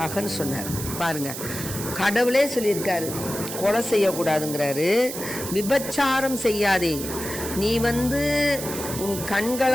சொன்னார். பாருங்க, கடவுளே சொல்லியிருக்காரு கொலை செய்யக்கூடாதுங்கிறாரு, விபச்சாரம் செய்யாதே. நீ உன்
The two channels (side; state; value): right; noise; hiss, 8 dB below the sound